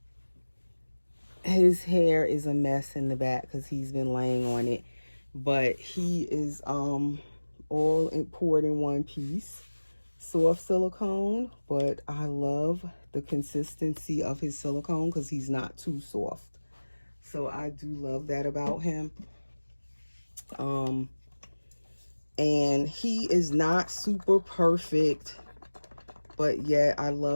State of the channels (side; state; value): both; inverted; correlation -1.00